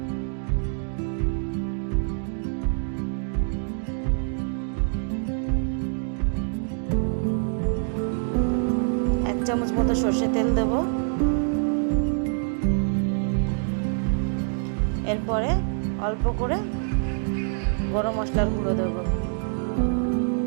এক চামচ মতো সর্ষের তেল দেব। এরপরে অল্প করে গরম মশলার গুঁড়ো দেবো।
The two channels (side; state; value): left; silent; 61 dB below the other